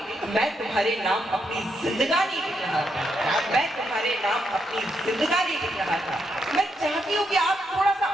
मैं तुम्हारे नाम अपनी जिंदगानी लिख रहा था, मैं तुम्हारे नाम अपनी जिंदगानी लिख रहा था। मैं चाहती हूँ कि आप थोड़ा सा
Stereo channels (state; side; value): normal; both; correlation 0.80